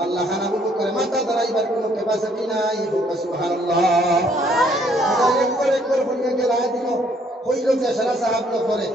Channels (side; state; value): both; normal; correlation 0.65